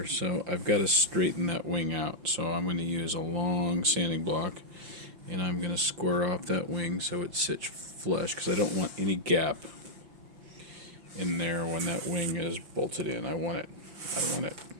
So I've got to straighten that wing out. So I'm going to use a long sanding block, and I'm going to square off that wing so it sits flush, because I don't want any gap in there when that wing is bolted in. I want it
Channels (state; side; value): late; left; 5.7 ms